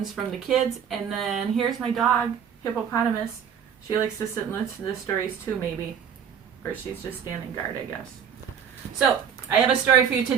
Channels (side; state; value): left; quieter; 7.9 dB